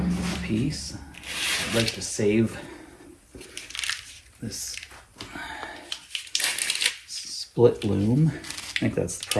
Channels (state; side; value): identical; both; correlation 1.00